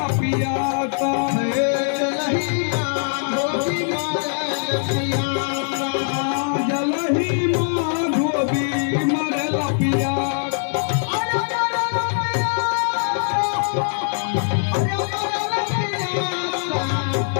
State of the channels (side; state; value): right; silent; 61 dB below the other